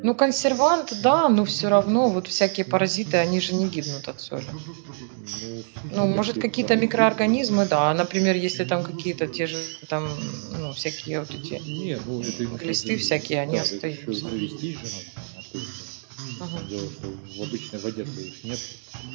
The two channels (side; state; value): left; silent; 62 dB below the other